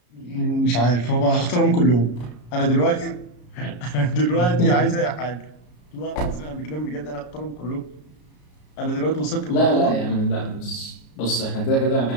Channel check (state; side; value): late; right; 33 ms